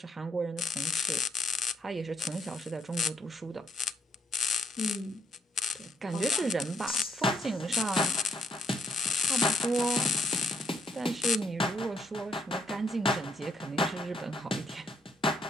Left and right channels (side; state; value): both; normal; correlation 0.72